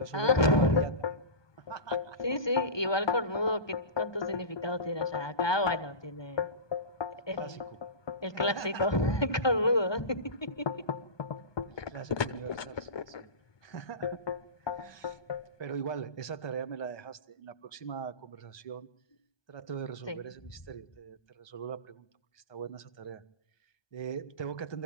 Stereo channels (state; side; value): late; right; 1.2 ms